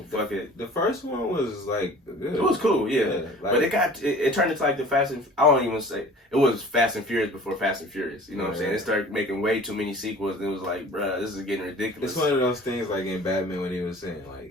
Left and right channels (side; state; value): both; normal; correlation 0.45